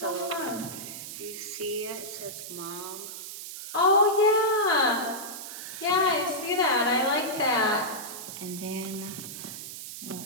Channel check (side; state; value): right; noise; hiss, 10 dB below the sound